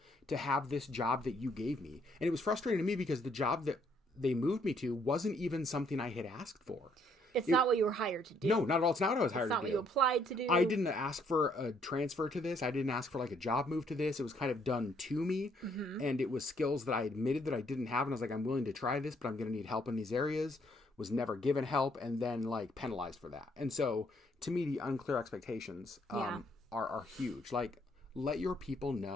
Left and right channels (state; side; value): normal; both; correlation 0.68